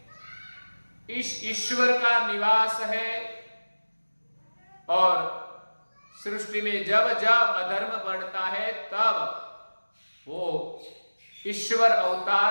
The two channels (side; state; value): both; inverted; correlation -1.00